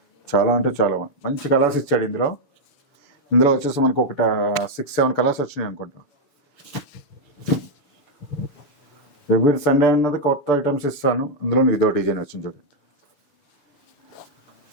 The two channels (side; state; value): right; late; 7.0 ms